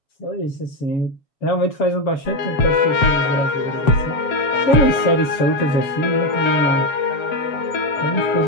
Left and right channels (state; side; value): late; right; 7.0 ms